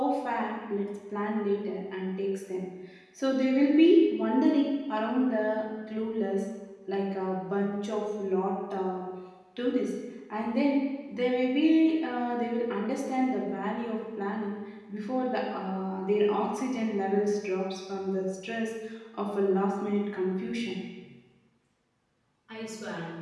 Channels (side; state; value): both; identical; correlation 1.00